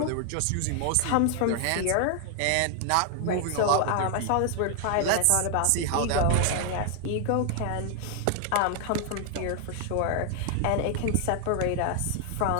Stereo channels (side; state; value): both; different; correlation 0.00